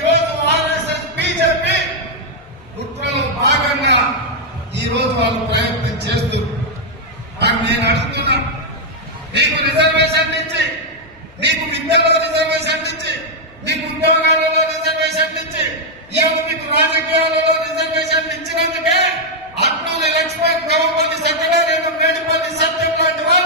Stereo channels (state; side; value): normal; both; correlation -0.03